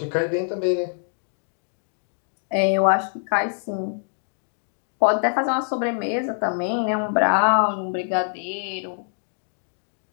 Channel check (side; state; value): right; silent; digital silence